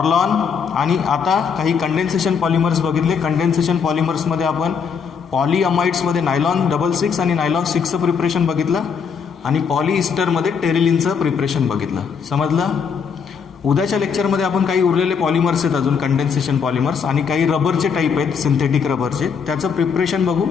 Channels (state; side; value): quieter; right; 6.3 dB